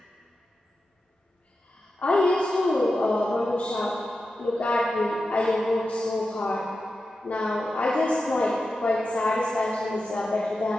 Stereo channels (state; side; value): normal; both; correlation 0.91